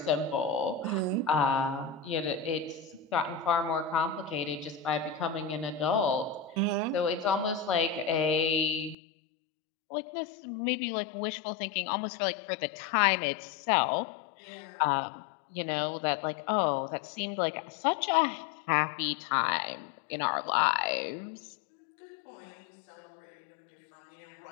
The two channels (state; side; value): drops out; right; at 9.0 s